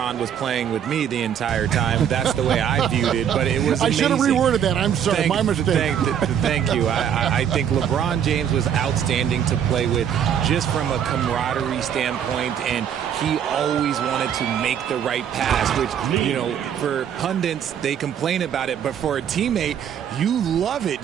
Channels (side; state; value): left; quieter; 8.9 dB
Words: was playing with me the entire time. That's the way I viewed it, but it was amazing. I should have reworded that. I'm sorry, my mistake. Thank you. I think LeBron James was outstanding to play with just from a camaraderie standpoint, and he always wanted to make the right pass, which, you know, for pundits, they complain about it, but for a teammate, you love it.